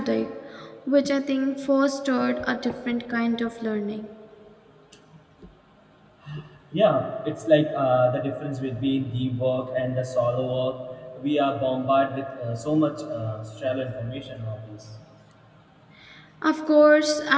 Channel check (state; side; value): identical; both; correlation 1.00